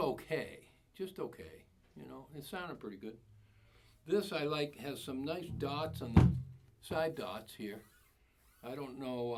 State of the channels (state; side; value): identical; both; correlation 1.00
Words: just okay. You know, it sounded pretty good. This I like, has some nice dots on the side dots here. I don't know